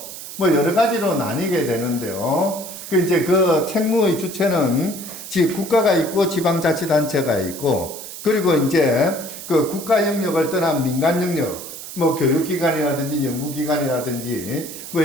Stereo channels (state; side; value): noise; right; hiss, 11 dB below the sound